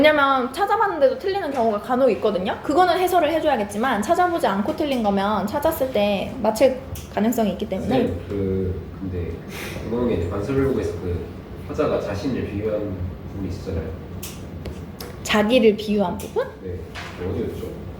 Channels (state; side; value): identical; both; correlation 1.00